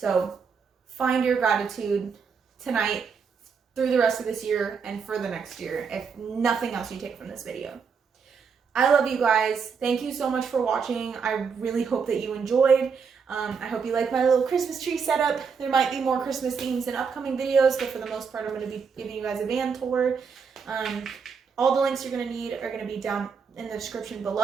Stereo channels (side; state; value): left; quieter; 5.9 dB